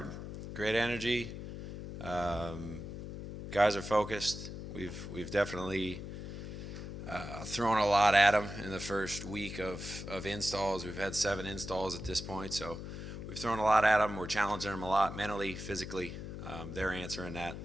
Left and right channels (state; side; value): noise; left; hum, 8 dB below the sound